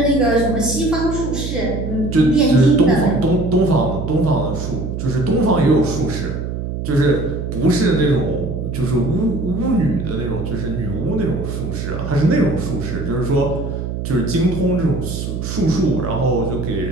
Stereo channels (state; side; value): noise; right; hum, 5 dB below the sound